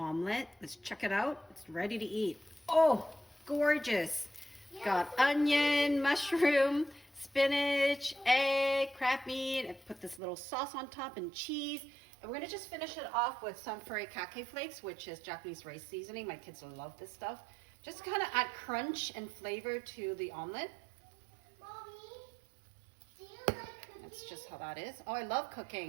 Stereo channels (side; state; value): left; drops out; at 10.2 s